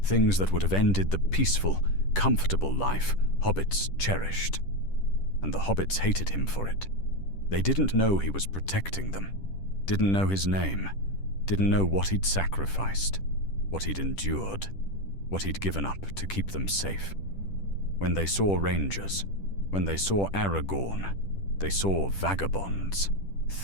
Things that would have ended the peaceful, comfortable life hobbits cherished. And the hobbits hated him for it. They didn't know he was protecting them. Didn't know his name. Didn't know what he'd sacrificed. What he'd endured. What he'd given up to keep them safe. When they saw rangers, when they saw Aragorn, they saw vagabonds,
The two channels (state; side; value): late; right; 10 ms